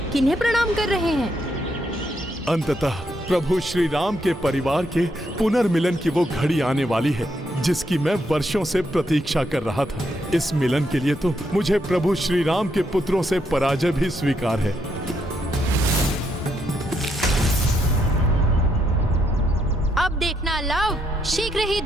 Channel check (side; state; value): both; normal; correlation 0.77